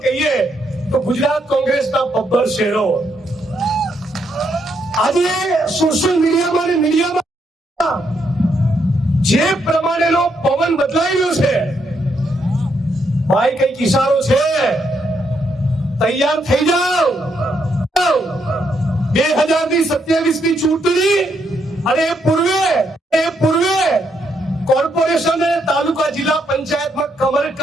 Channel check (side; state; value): both; normal; correlation 0.77